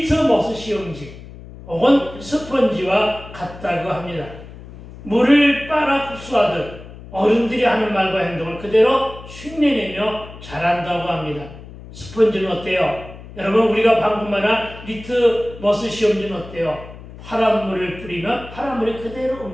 시험지 혹은 스펀지와 같다고 합니다. 물을 빨아 흡수하듯 어른들이 하는 말과 행동을 그대로 흉내내며 자란다고 합니다. 스펀지는 어때요? 여러분 우리가 방금 말한 리트머스 시험지는 어때요? 파란 물을 뿌리면 파란 물이 그대로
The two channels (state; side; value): noise; left; hum, 16 dB below the sound